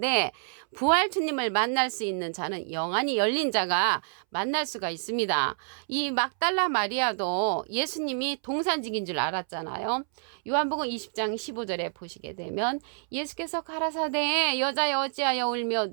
부활 주님을 만날 수 있는 자는 영안이 열린 자가 만날 수가 있습니다. 이 막달라 마리아도 예수님이 동산직인 줄 알았잖아요. 요한복음 20장 15절에 보시게 되면 예수께서 가라사대 여자여 어찌하여 울며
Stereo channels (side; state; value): left; silent; 59 dB below the other